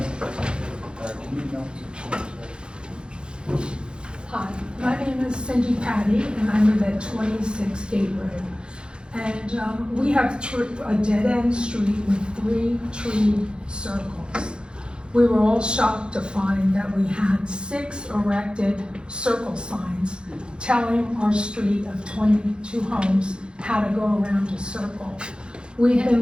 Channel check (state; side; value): late; left; 0.052 ms